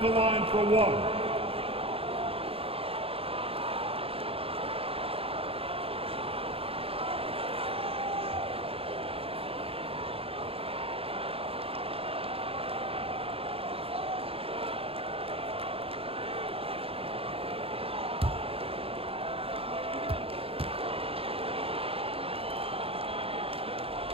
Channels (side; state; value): left; late; 0.27 ms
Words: the line for 1.